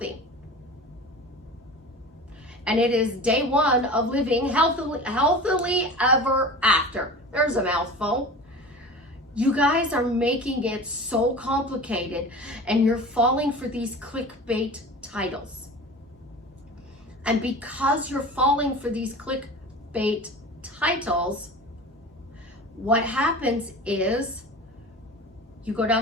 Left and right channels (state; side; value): normal; both; correlation 0.36